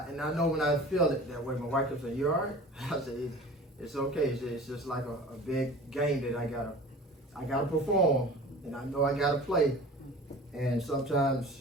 I know when I feel it that way, my wife kept saying, you all right? I said, it's okay. It's just like a big game that I gotta perform, and I know I gotta play. And sometimes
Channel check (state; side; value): normal; both; correlation 0.41